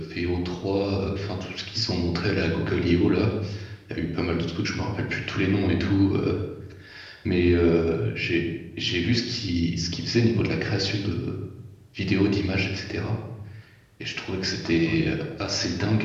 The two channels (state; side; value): identical; both; correlation 1.00